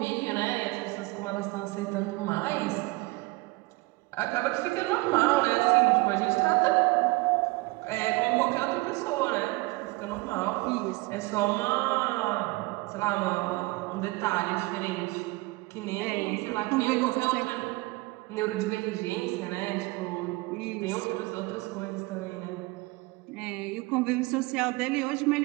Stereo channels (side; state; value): left; quieter; 23.2 dB